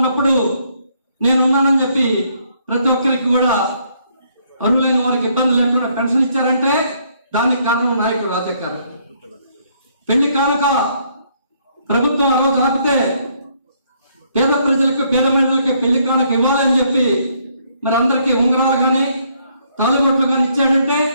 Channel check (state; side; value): inverted; both; correlation -0.69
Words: నేనున్నానని చెప్పి ప్రతి ఒక్కరికి కూడా అరువులైన వారికి ఇబ్బంది లేకుండా పెన్షన్ ఇచ్చారంటే దానికి కారణం నాయకుడు రాజా గారు. పెళ్లి కానుక ప్రభుత్వం ఆ రోజు ఆపితే పేద ప్రజలకు, పేద మహిళలకి పెళ్లి కానుక ఇవ్వాలి అని చెప్పి మరి అందరికీ ఉంగరాలు కానీ తాళిబొట్లు కానీ ఇచ్చాడంటే